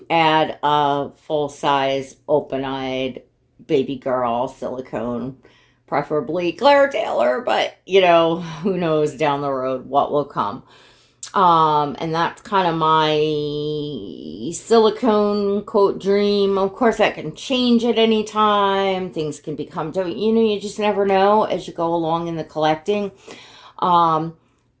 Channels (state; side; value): identical; both; correlation 1.00